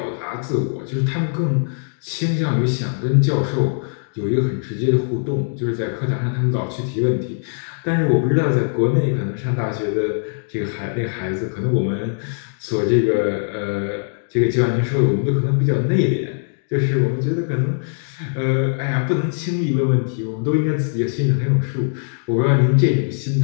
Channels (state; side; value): silent; right; digital silence